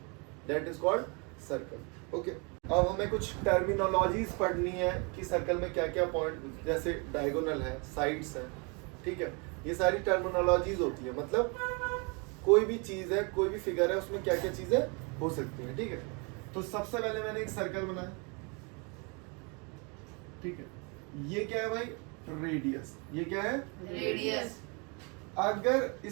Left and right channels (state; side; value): quieter; left; 32.4 dB